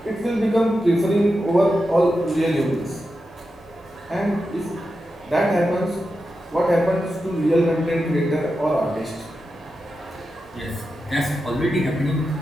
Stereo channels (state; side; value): normal; both; correlation 0.89